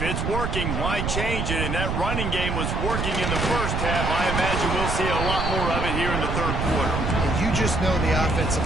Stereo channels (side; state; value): right; noise; rumble, 1 dB below the sound